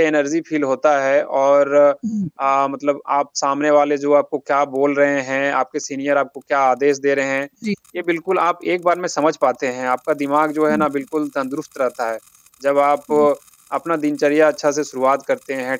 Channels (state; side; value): identical; both; correlation 1.00